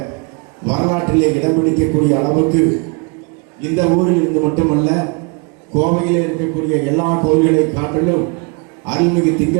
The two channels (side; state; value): left; quieter; 32.1 dB